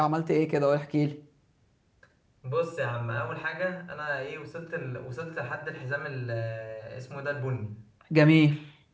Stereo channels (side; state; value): both; identical; correlation 1.00